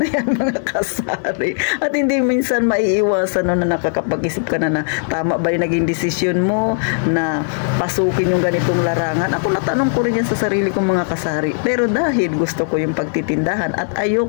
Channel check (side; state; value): right; silent; digital silence